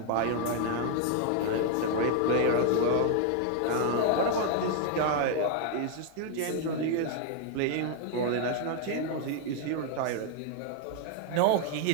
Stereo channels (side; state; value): both; different; correlation 0.00